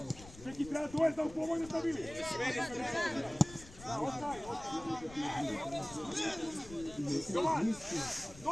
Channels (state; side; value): noise; left; rumble, 17 dB below the sound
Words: Čeki, treba to je da u pomojno stavili. Jovan!